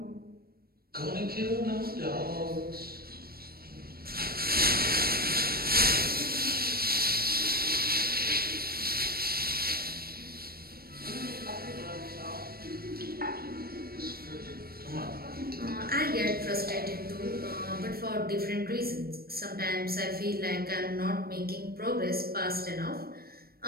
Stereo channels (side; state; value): left; late; 0.44 ms